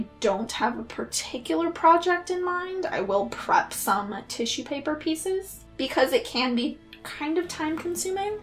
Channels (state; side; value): identical; both; correlation 1.00